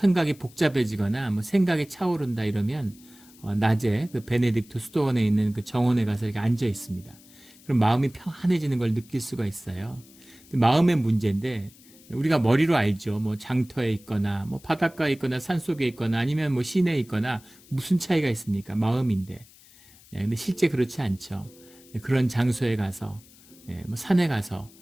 복잡해지거나 뭐 생각이 차오른다 이러면 낮에 그 베네딕토 수도원에 있는 그 정원에 가서 이렇게 앉아 있습니다. 그럼 마음이 평안해지는 걸 느낄 수가 있어요. 마음의 문제인데 우리가 머리로 알죠. 뭐 장터에 있거나 뭐 바닷가에 있거나 산속에 있거나 아니면 뭐 시내에 있거나 무슨 차이가 있습니까? 마음인데. 근데 실제 그렇지 않죠. 그런 장소에 가서 뭐 산에 가서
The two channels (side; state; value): left; noise; hiss, 25 dB below the sound